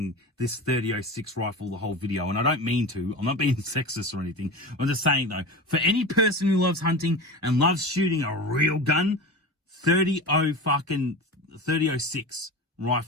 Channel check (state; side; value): normal; both; correlation 0.29